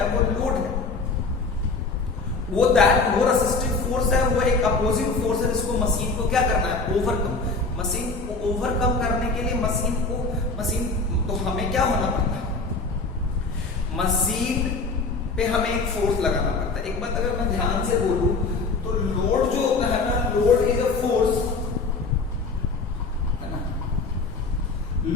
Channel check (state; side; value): quieter; right; 3.9 dB